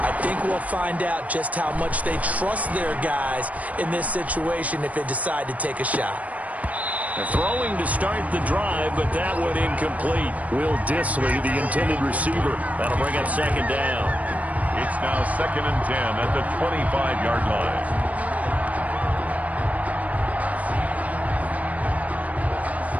I think we'll find out just how much they trust their guys in this situation if they decide to take a shot. They're throwing to start the drive, but that one incomplete. Will Dissly, the intended receiver. That'll bring up 2nd down. It's now 2nd and 10 at the 25-yard line.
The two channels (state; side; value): late; left; 0.070 ms